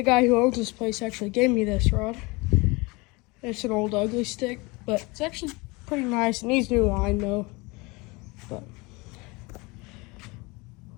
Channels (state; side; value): quieter; right; 25.5 dB